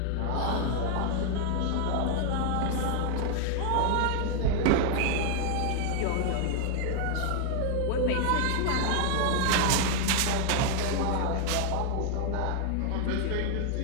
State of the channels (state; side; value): different; both; correlation 0.00